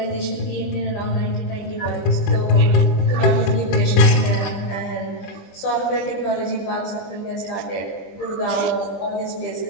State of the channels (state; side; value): late; right; 20 ms